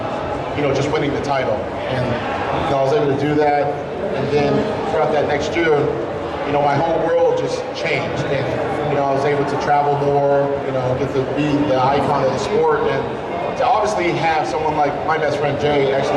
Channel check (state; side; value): identical; both; correlation 1.00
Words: you know, just winning the title. And you know, I was able to do that. And then throughout that next year, you know, my whole world just changed. And you know, I was able to travel more. You know, get to be the icon of the sport. And to obviously have someone like my best friend Jay